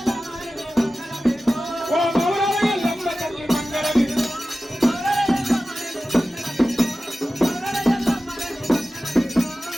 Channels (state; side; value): normal; both; correlation 0.95